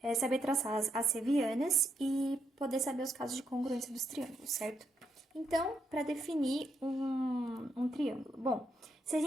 saber traçar as assevianas e poder saber os casos de congruência dos triângulos, certo? Então, para definir um triângulo. Bom, se a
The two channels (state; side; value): normal; both; correlation 0.79